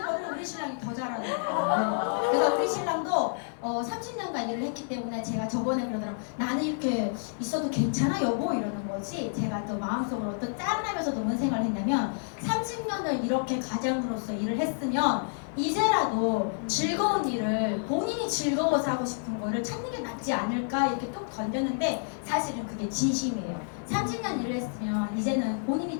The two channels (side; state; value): right; silent; digital silence